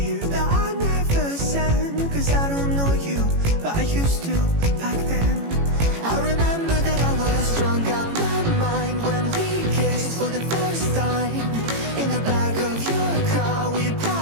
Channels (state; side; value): late; left; 18 ms